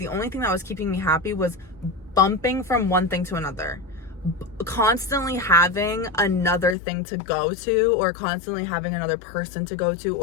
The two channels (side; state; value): right; drops out; at 6.8 s